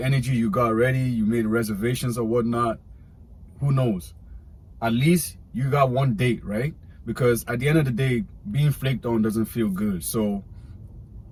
energy, you got ready, you made reservations or whatnot. Who knows? At least you got 1 date, right? Because at the end of the day, being flaked on doesn't feel good. So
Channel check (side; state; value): both; identical; correlation 1.00